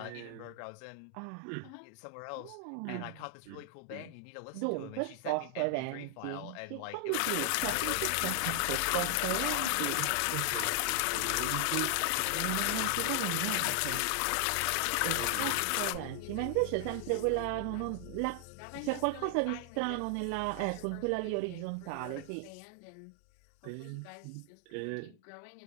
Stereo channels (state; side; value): different; both; correlation 0.00